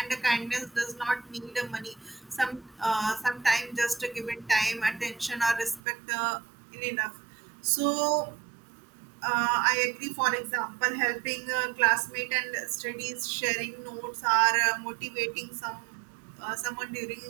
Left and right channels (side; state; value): left; drops out; at 5.8 s